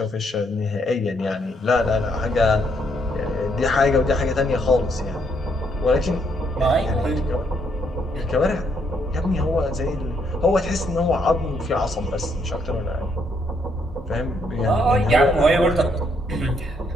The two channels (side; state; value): both; normal; correlation 0.73